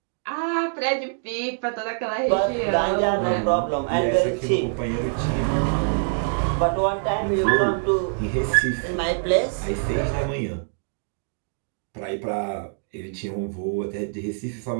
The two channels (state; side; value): silent; left; digital silence